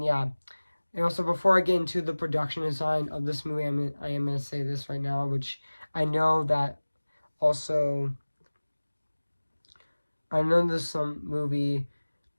And also, before I get into the production design of this movie, I am going to say this right now, which I know that also, I know this movie,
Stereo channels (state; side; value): inverted; both; correlation -1.00